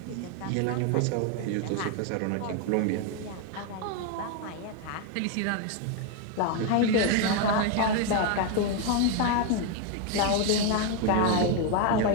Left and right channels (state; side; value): different; both; correlation 0.01